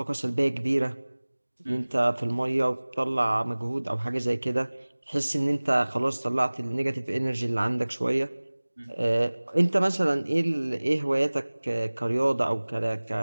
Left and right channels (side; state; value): both; inverted; correlation -1.00